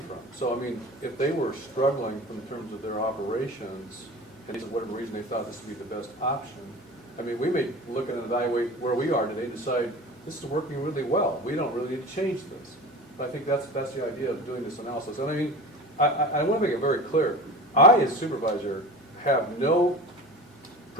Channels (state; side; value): normal; both; correlation 0.35